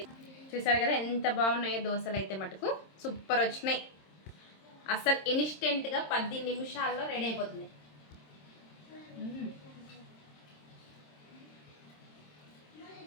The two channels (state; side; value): late; right; 26 ms